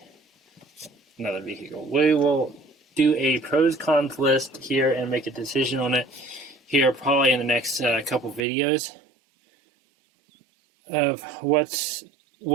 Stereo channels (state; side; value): drops out; left; at 8.4 s